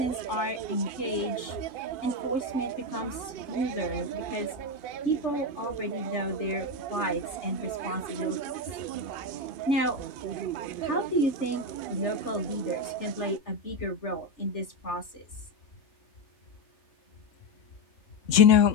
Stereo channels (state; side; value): late; right; 3.3 ms